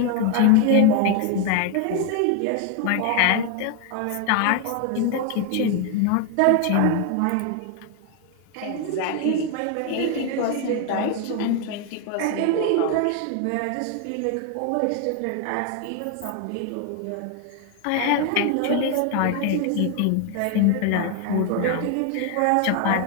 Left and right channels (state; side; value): different; both; correlation 0.01